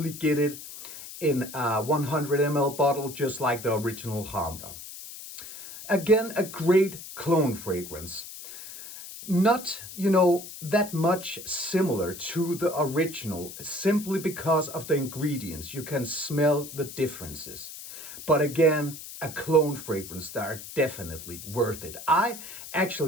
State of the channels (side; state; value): left; noise; hiss, 12 dB below the sound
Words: get it in a 100 ml bottle, just like the original Khamrah. Again, a great clone fragrance. Not, that much similar to the original, simply because of the ingredients. You can smell the differences. But again, a clone fragrance that are definitely worth it. I